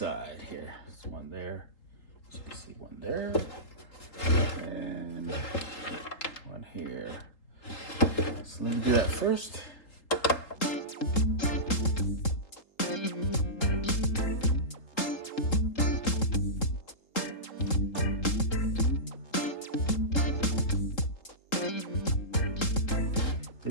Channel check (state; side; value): late; right; 3.8 ms